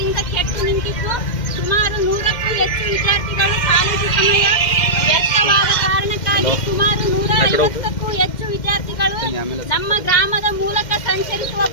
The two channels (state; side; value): late; right; 2.1 ms